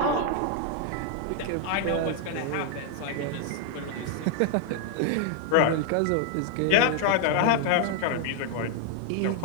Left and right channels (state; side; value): different; both; correlation 0.00